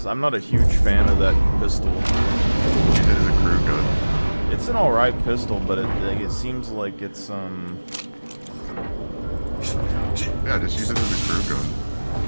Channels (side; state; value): both; inverted; correlation -1.00